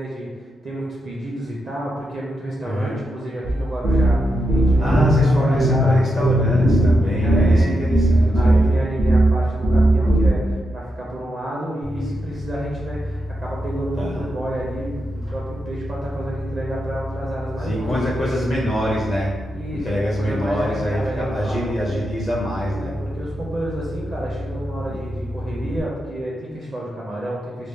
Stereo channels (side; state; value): both; normal; correlation 0.86